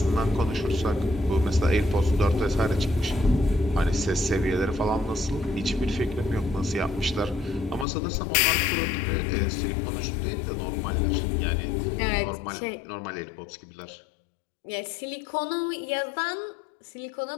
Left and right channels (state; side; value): drops out; right; at 7.9 s